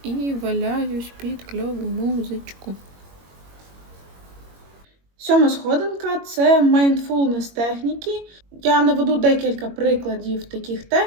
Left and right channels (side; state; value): left; late; 21 ms